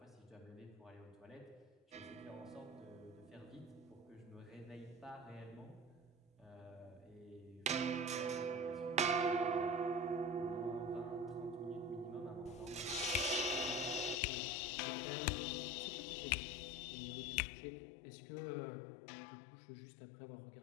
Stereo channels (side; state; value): right; drops out; at 14.2 s